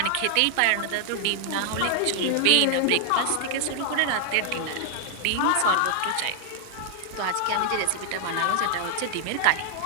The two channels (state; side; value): different; both; correlation 0.00